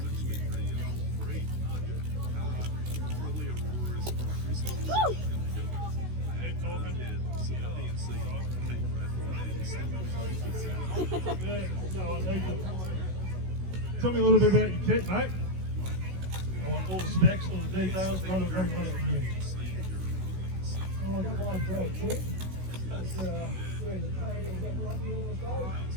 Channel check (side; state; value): left; late; 16 ms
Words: Yeah, so tell me a little bit about your kit, mate. I want all the specs, all the details, run it through me. Oh, I got one great kit. It's